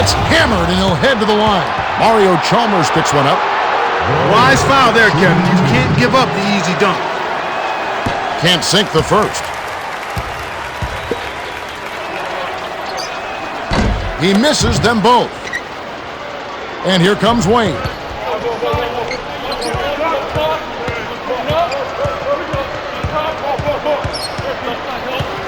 hammered and he'll head to the line. Mario Chalmers picks one up. Wise foul there, Kevin. You can't give up the easy dunk. Can't sink the first. He misses them both. And here comes Wayne.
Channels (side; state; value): both; identical; correlation 1.00